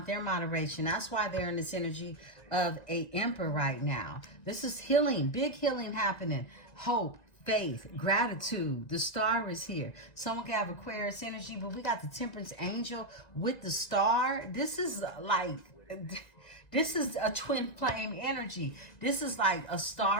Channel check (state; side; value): late; right; 1.9 ms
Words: their moderation. That's why they're in this energy of a Emperor right now. This is healing. Big healing happening. Hope, faith, gratitude. The Star is here. Someone can have Aquarius energy, but we got the Temperance Angel with the Star. This is like... This is a twin flame energy. This is like a